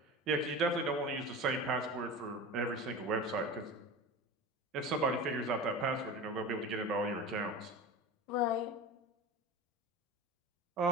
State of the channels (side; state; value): both; normal; correlation 0.31